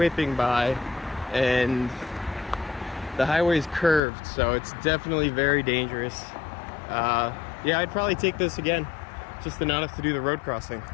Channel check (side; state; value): right; drops out; at 4.0 s